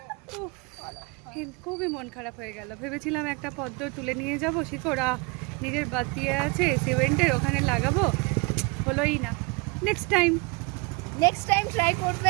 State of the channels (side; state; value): left; quieter; 28.2 dB